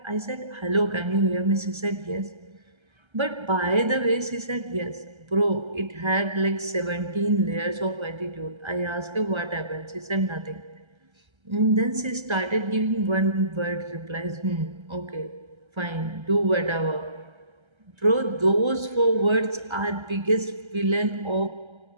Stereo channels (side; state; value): left; late; 1.3 ms